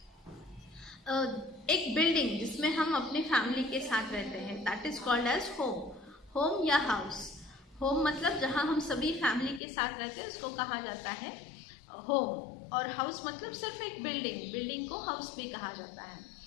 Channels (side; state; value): right; drops out; at 9.6 s